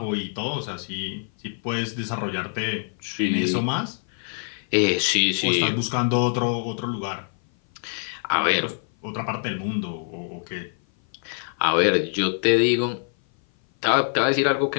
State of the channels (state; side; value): silent; right; 57 dB below the other